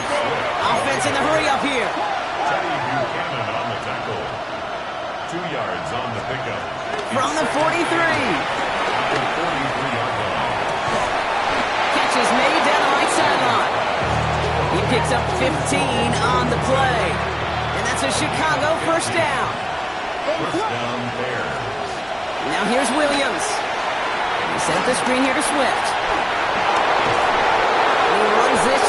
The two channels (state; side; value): identical; both; correlation 1.00